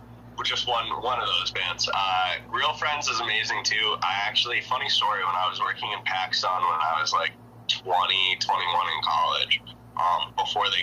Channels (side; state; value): both; identical; correlation 1.00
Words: we're just one of those bands. Real Friends is amazing too. I actually, funny story, when I was working in PacSun when I was like 20, 21 in college, before